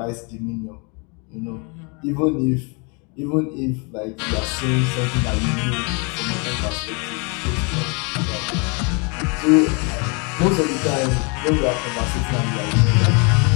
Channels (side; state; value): right; quieter; 32.9 dB